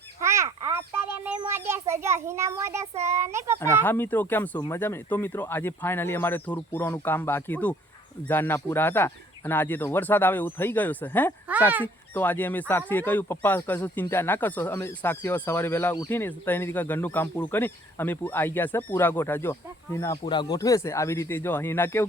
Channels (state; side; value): normal; both; correlation 0.59